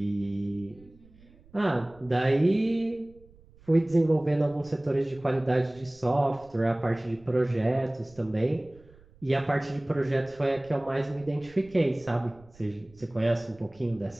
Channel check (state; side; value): noise; right; rumble, 26 dB below the sound